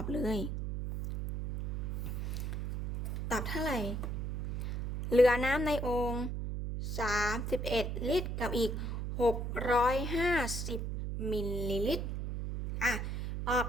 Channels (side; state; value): right; noise; hum, 2 dB below the sound